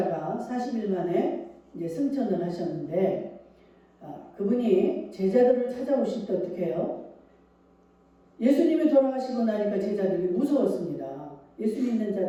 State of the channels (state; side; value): identical; both; correlation 1.00